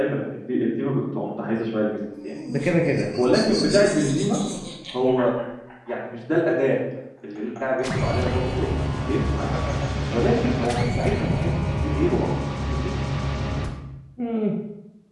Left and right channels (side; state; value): both; identical; correlation 1.00